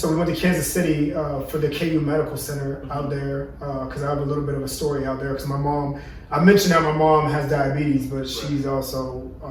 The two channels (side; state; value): both; identical; correlation 1.00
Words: we went to Kansas City for the KU Medical Center out there because I have a little bit of a story out there because my mom, I mentioned that my mom has diabetes, but she's also